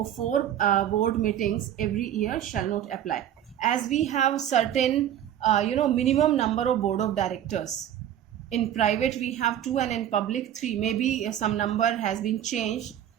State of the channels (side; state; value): left; quieter; 10.8 dB